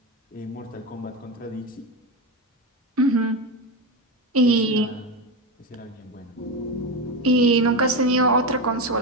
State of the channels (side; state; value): both; normal; correlation 0.15